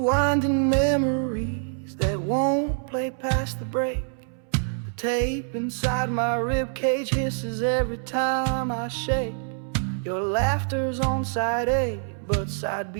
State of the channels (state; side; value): silent; left; 61 dB below the other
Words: memories that won't play past the break. The tape inside my ribcage hisses every time I shake. Your laughter's on side A, but side